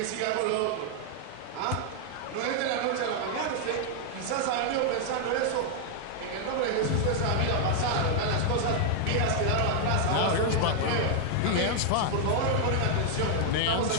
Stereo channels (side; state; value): both; different; correlation 0.00